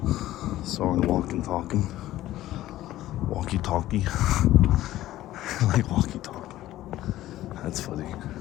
Soren walking talking. Walkie talkie. Like walkie talkie. That's funny.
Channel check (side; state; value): right; quieter; 14.7 dB